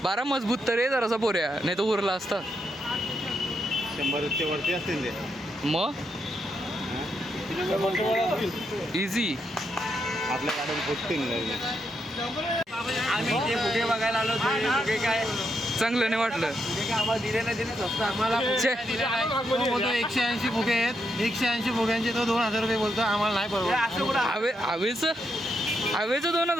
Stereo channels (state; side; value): normal; both; correlation 0.81